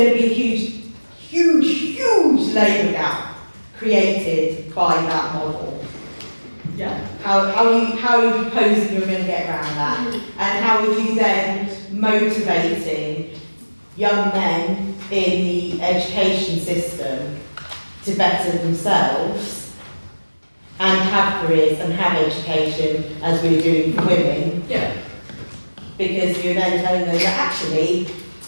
to be a huge labour gap created by that model. Yeah. How are you proposing you're going to get around that? And how are you then motivating young men in the education system to better themselves and have careers and have education as we're doing for women? Yeah. Because you're then telling them that actually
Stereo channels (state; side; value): inverted; both; correlation -1.00